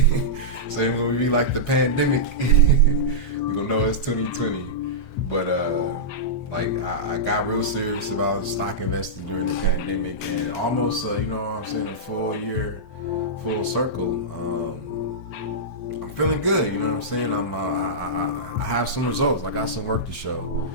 So when we be like the pandemic, we gonna know it's 2020. But like I got real serious about stock investing during the pandemic, and almost you know what I'm saying, a full year, full circle. I'm feeling good, you know what I'm saying. I have some results. I got some work to show,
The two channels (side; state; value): right; late; 7.6 ms